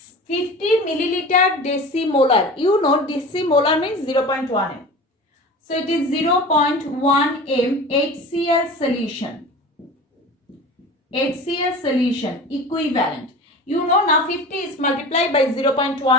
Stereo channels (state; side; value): normal; both; correlation 0.35